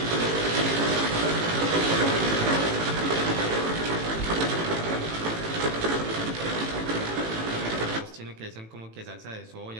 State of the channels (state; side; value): late; left; 18 ms